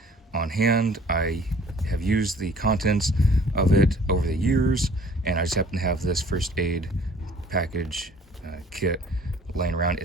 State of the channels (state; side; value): normal; both; correlation 0.53